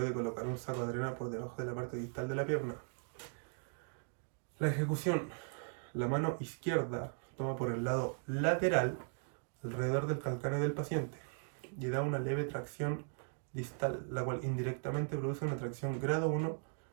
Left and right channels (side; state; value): left; silent; 52 dB below the other